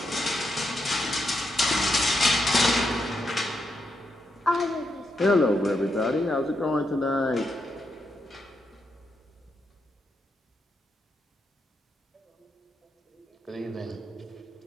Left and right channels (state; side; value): normal; both; correlation 0.82